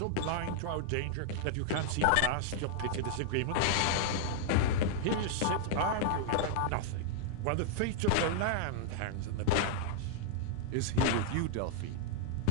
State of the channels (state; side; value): different; both; correlation -0.01